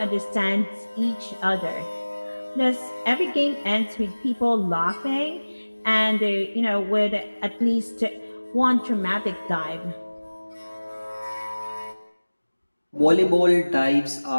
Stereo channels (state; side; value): inverted; both; correlation -1.00